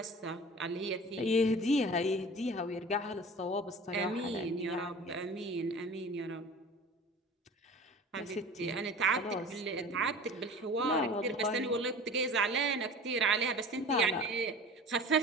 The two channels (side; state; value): both; normal; correlation 0.40